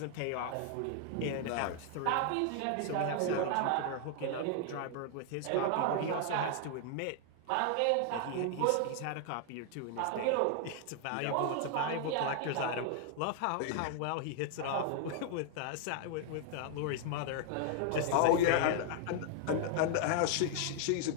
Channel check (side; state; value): both; different; correlation 0.00